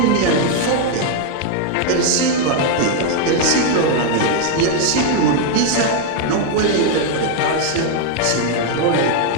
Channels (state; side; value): different; both; correlation 0.00